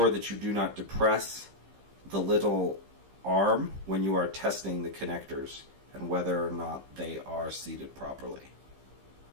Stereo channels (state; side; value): late; left; 15 ms